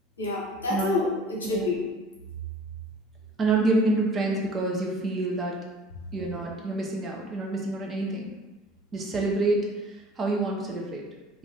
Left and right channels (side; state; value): both; normal; correlation 0.48